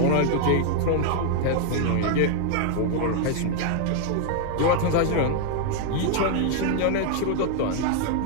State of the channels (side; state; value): both; different; correlation 0.00